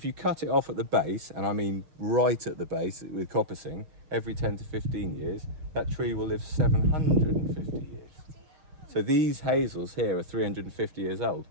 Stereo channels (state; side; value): late; left; 6.5 ms